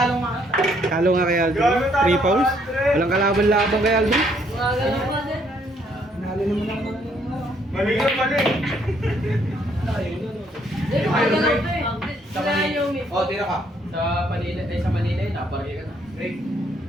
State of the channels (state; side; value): normal; both; correlation 0.68